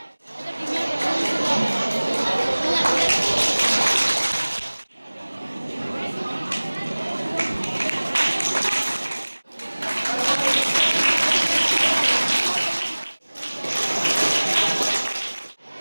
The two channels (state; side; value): inverted; both; correlation -1.00